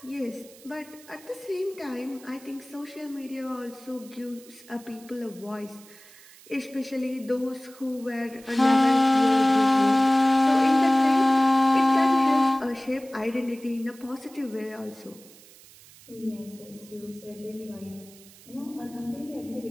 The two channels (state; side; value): noise; right; hiss, 23 dB below the sound